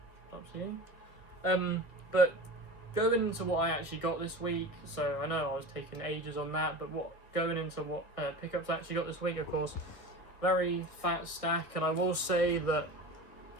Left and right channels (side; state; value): right; late; 1.4 ms